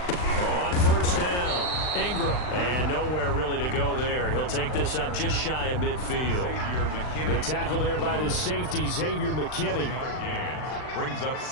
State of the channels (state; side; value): late; right; 39 ms